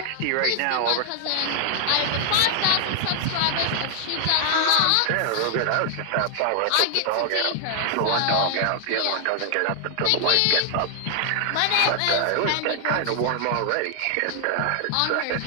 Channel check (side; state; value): both; different; correlation 0.00